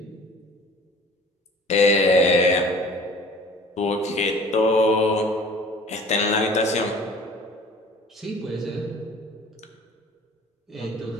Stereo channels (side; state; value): both; normal; correlation 0.47